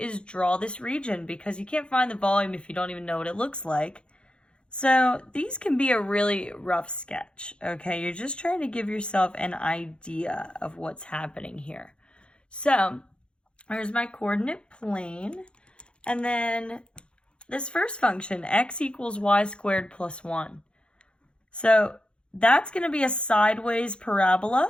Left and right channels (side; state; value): right; late; 0.056 ms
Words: draw this region, because you can't find the volume if you don't even know what it looks like. So these can be a really rough sketch, okay? You're just trying to give yourself an idea of what's happening here. So here's my coordinate plane, and then this first function, x equals y squared plus 1. So that's going to be a sideways